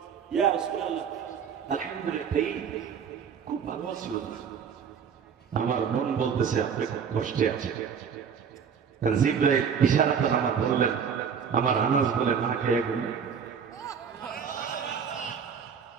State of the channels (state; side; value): quieter; left; 7.0 dB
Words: ইয়া রাসূলুল্লাহ, আলহামদুলিল্লাহ, খুব ভালো আছি। আমার মন বলতেছে আপনি খুব কষ্টে আছেন। জিবরাইল ইশারাতে আমার বললেন, আমার আনাস বলে না খেয়ে ঘুম।